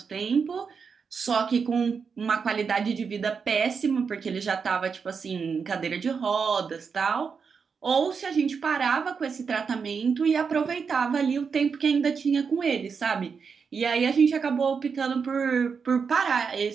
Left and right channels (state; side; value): quieter; left; 5.8 dB